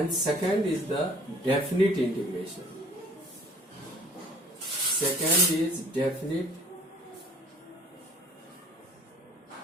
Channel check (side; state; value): both; normal; correlation 0.52